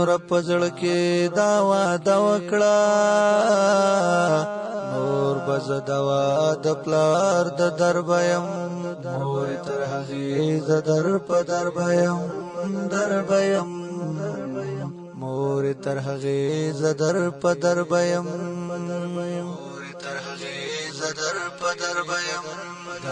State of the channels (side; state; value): both; identical; correlation 1.00